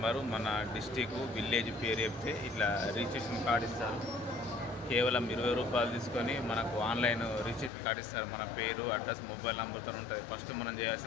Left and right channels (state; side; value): drops out; right; at 7.7 s